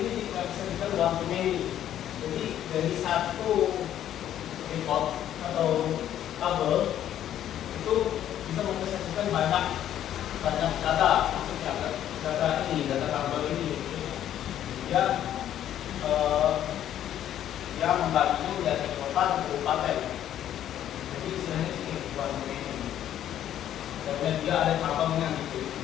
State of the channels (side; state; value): right; quieter; 11.2 dB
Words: tidak bisa dibilang one-to-many. Jadi dari satu report atau tabel itu bisa mempresentasikan banyak data, maksudnya data ini, data tabel ini. Dia membaginya menjadi kota dan kabupaten. Jadi istilahnya sini one-to-many. Dan dia ada tabelnya gitu.